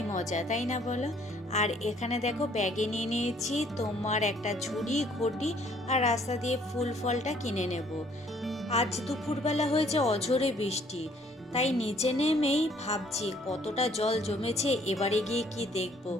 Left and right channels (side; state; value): both; normal; correlation 0.62